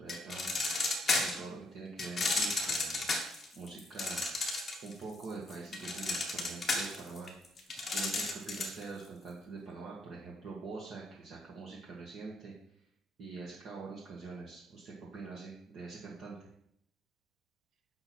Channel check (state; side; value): normal; both; correlation 0.72